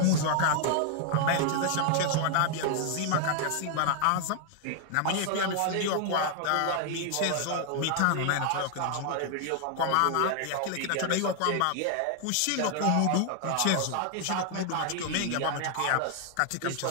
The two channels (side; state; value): both; different; correlation 0.00